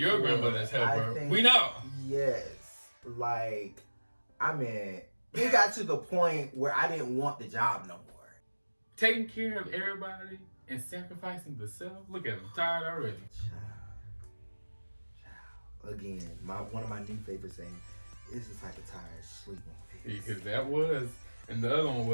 grandmother's helper. We know. Yes. Like, I mean, it got to the point where I didn't want the job no more. Taking care of everybody and sacrificing the self. Look at him, tired already. Child. Again, one of my new favorite sayings is the type of tired sleep on face. Because that was, and the other one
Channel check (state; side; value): inverted; both; correlation -1.00